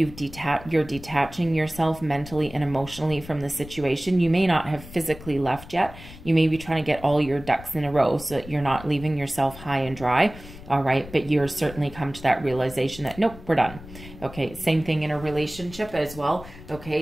detaching yourself mentally and emotionally from the situation, you may not have physically left yet. You may be trying to get all your ducks in a row so that you're not leaving yourself high and dry, all right? But you're certainly come to that realization that, nope, we're done, okay? Same thing in a relationship as well,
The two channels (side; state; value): left; noise; rumble, 16 dB below the sound